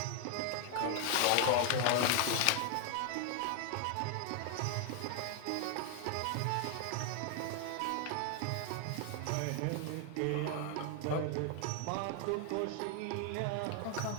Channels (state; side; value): different; both; correlation 0.00